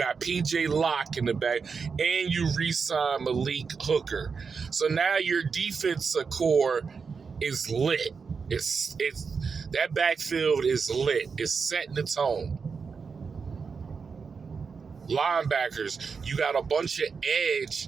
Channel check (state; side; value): quieter; left; 5.4 dB